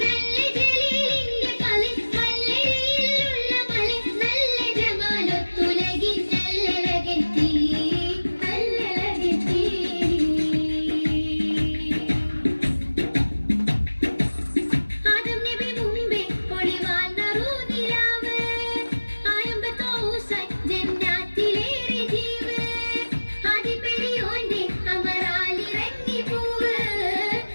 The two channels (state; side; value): inverted; both; correlation -1.00